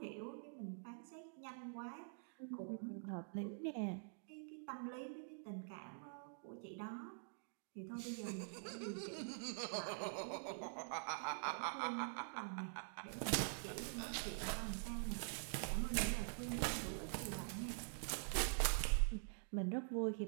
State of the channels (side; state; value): left; silent; digital silence